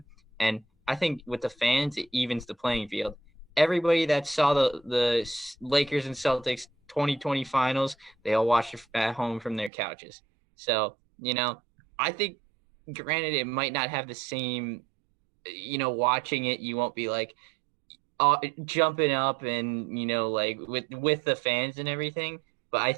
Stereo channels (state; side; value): drops out; left; at 9.7 s